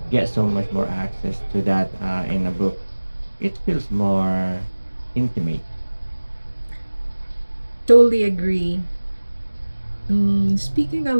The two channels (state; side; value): inverted; both; correlation -1.00